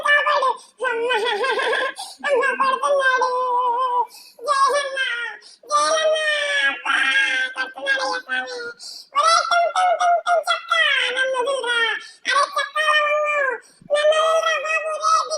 కాపాడు. అమ్మ కొడుతున్నాడు జోయల్ అన్న, జోయల్ అన్న అబ్బా కొడుతున్నాడయ్యా స్వామి. ఒరే టుంటుం టుంటుం చక్క నన్ను వదిలిరా. అరే చక్క లవంగు నన్ను వదిలిరా బాబు.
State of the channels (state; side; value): identical; both; correlation 1.00